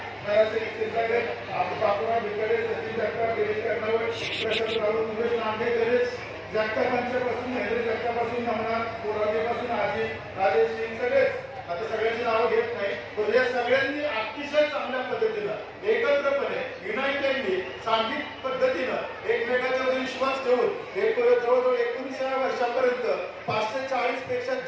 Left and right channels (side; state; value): both; identical; correlation 1.00